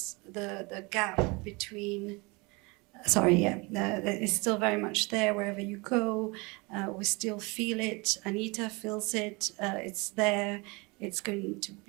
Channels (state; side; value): quieter; left; 27.2 dB